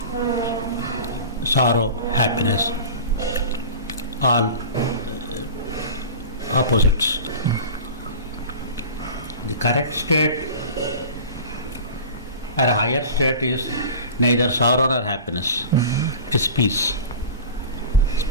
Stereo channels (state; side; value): inverted; both; correlation -0.35